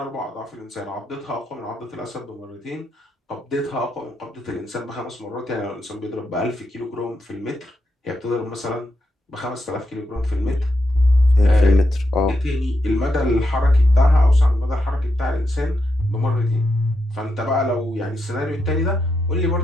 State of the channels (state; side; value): normal; both; correlation 0.84